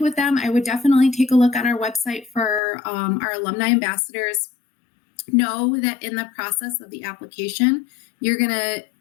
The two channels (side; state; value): right; drops out; at 2.6 s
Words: them, I would definitely take a look on our website for our alumni ambassadors. Know that in the process of the application, you're going to,